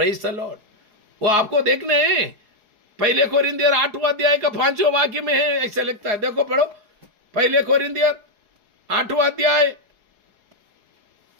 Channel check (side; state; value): left; late; 4.8 ms